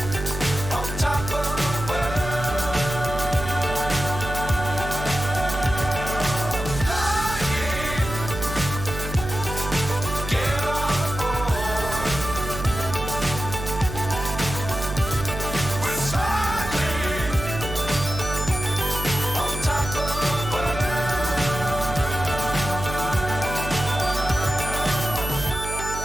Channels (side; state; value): right; noise; hum, 7 dB below the sound